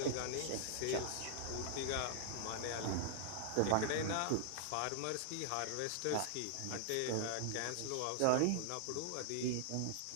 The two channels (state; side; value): different; both; correlation -0.01